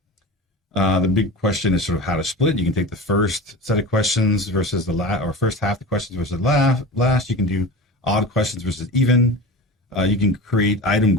The big question is sort of how to split. You can take the first set of questions versus the last, or first half of the questions versus the last. You can do odd questions versus even. You can create item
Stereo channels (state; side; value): normal; both; correlation 0.31